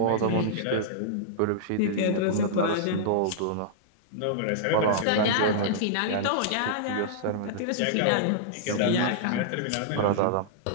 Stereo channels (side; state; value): both; different; correlation -0.02